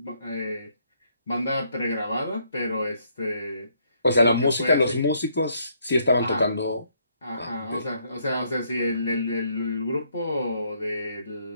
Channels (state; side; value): inverted; both; correlation -0.71